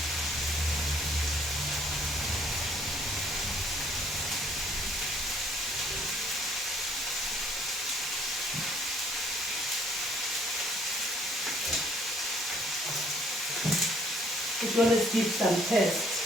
It's going to give some taste.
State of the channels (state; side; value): normal; both; correlation 0.62